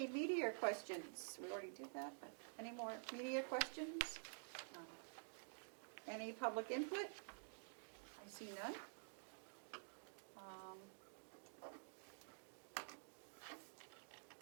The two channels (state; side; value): silent; left; digital silence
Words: media questions? We already did that, but any more media questions? Any public input? I see none.